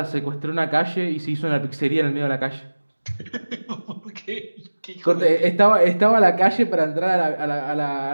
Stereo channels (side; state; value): both; inverted; correlation -1.00